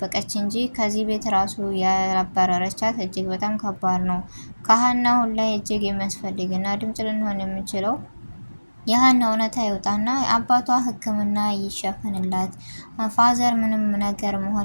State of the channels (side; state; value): both; inverted; correlation -1.00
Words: እንጂ ከዚህ ቤት ራሱ ያባረረቻት እጅግ በጣም ከባድ ነው። ከሀና አሁን ላይ እጅግ የሚያስፈልግና ድምጽ ልንሆን የምንችለው የሀና እውነታ ይወጣና አባቷ ሕክምና ይሸፈንላት። ፋዘር ምንም ነገር